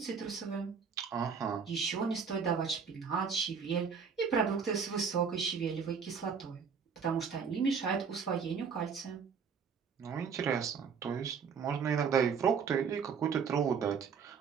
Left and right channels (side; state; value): left; quieter; 6.3 dB